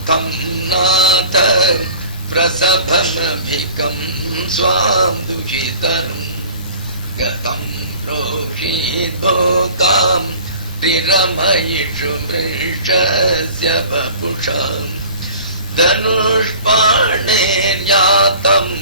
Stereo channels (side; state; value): both; inverted; correlation -0.44